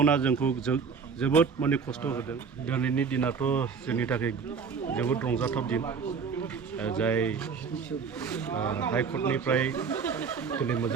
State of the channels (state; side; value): quieter; left; 5.8 dB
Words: जोंखौ जोबोद माने खस्थ' होदों। दिनैनि दिनाथ' जोंनि थाखाय जोबोद रंजाथाव दिन। जाय हाइकर्टनिफ्राय दिनै